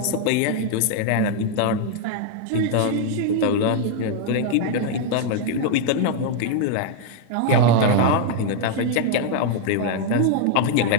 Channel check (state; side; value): different; both; correlation 0.00